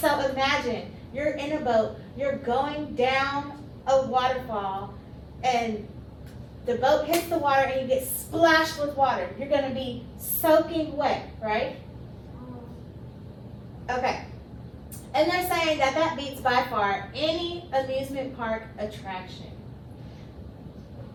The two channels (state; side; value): identical; both; correlation 1.00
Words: So imagine you're in a boat, you're going down a waterfall, and the boat hits the water and you get splashed with water. You're going to be soaking wet, right? Okay. And they're saying that that beats by far any amusement park attraction.